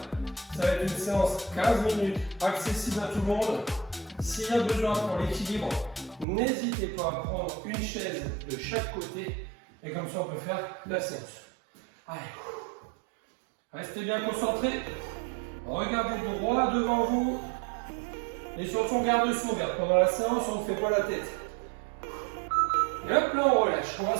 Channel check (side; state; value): left; drops out; at 6.2 s